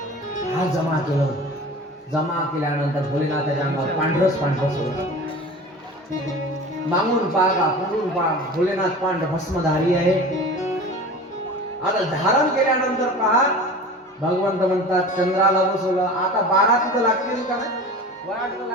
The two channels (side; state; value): both; normal; correlation 0.36